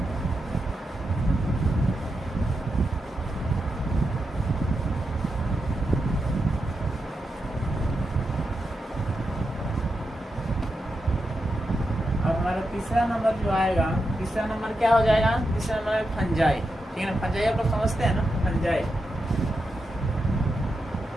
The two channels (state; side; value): normal; both; correlation 0.87